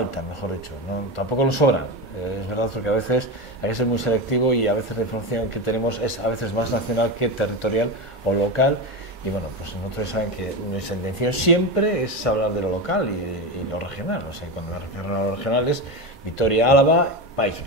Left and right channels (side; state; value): both; normal; correlation 0.18